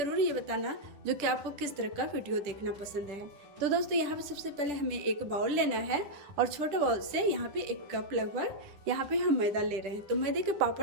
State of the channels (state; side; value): late; left; 10 ms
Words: ये बताना जो कि आपको किस तरह का वीडियो देखना पसंद है। तो दोस्तों, यहाँ पे सबसे पहले हमें एक बाउल लेना है और छोटे बाउल से यहाँ पे 1 कप लगभग यहाँ पे हम मैदा ले रहे हैं। तो मैदे के